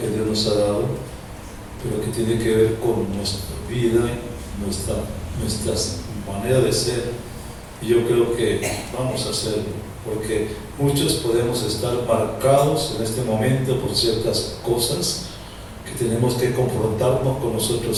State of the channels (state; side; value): identical; both; correlation 1.00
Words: Dios nos ha dado, pero que tiene que ver con nuestra vida, nuestra manera de ser, y yo creo que vamos a hacerlo, porque muchos podemos estar marcados en este momento por ciertas cosas que tenemos que confrontarnos con